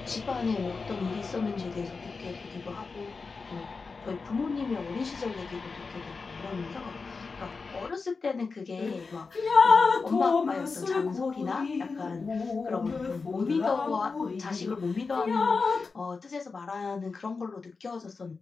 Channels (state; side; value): quieter; right; 4.5 dB